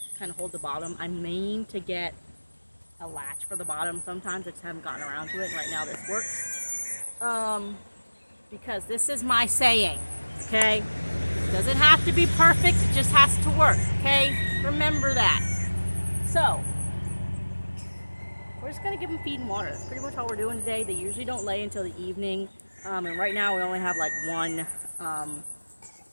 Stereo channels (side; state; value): both; inverted; correlation -1.00